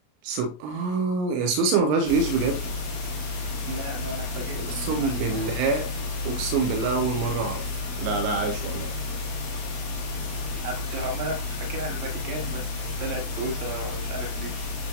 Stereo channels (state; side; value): late; left; 32 ms